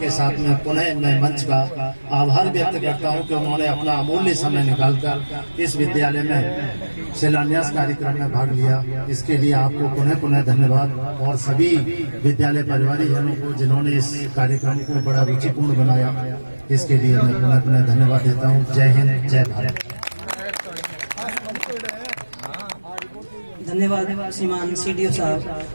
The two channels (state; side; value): inverted; both; correlation -1.00